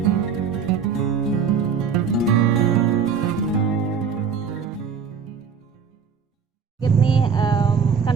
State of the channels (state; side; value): quieter; left; 6.3 dB